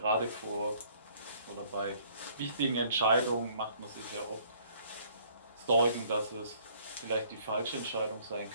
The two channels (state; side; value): inverted; both; correlation -0.59